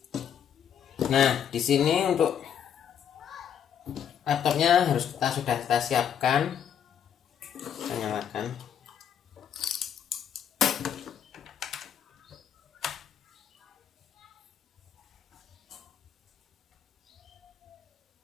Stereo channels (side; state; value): right; quieter; 8.7 dB